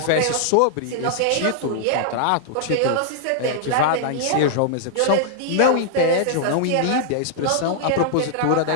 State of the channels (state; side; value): different; both; correlation -0.01